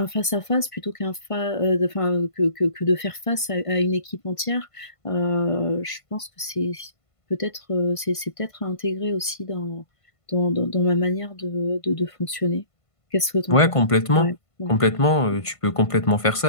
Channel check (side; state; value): right; late; 1.5 ms